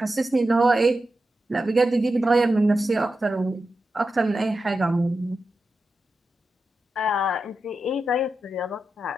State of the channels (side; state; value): both; normal; correlation 0.90